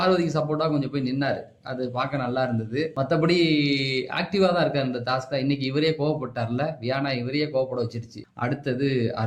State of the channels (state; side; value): identical; both; correlation 1.00